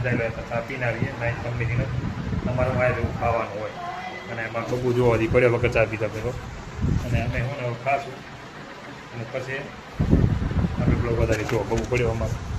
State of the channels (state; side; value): identical; both; correlation 1.00